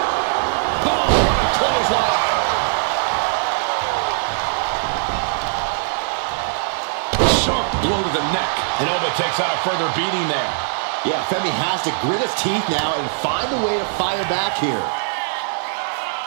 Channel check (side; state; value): left; silent; 65 dB below the other